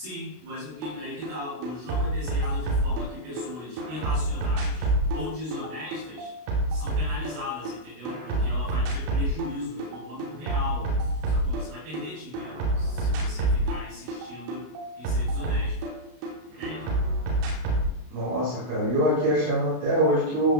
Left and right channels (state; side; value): late; left; 32 ms